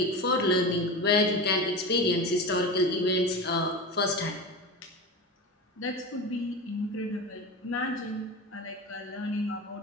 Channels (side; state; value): both; normal; correlation 0.27